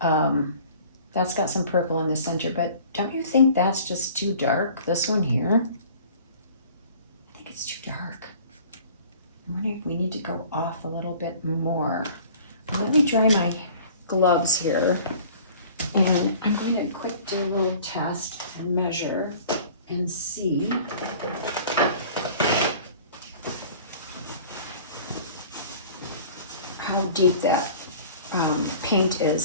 that's got some purple in the center. But don't you think that's just too dark, this one here? I think it's too dark. I'm wondering if we need to go off a little bit more. Let me dry my gloves here. And I'm going to quick do a little test and measure and see how deep that paint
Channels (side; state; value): both; inverted; correlation -0.47